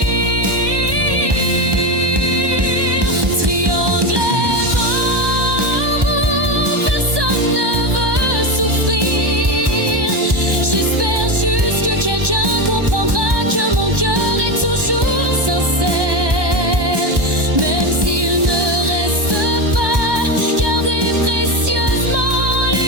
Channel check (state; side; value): late; left; 1.1 ms